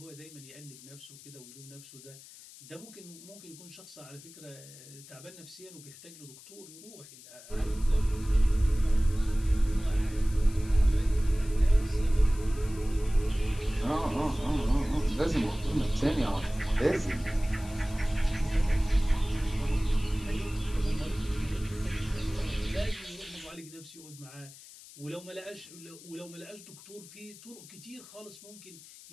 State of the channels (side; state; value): left; noise; hiss, 18 dB below the sound